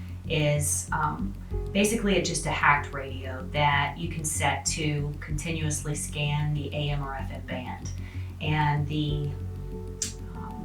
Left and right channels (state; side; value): identical; both; correlation 1.00